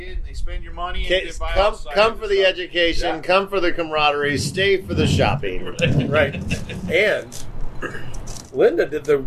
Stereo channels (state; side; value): identical; both; correlation 1.00